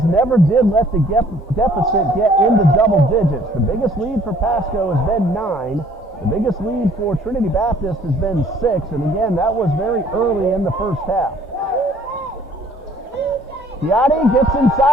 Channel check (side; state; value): both; normal; correlation 0.58